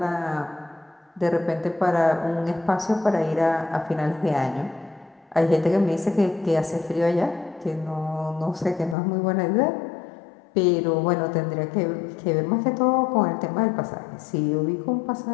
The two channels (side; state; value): right; drops out; at 9.0 s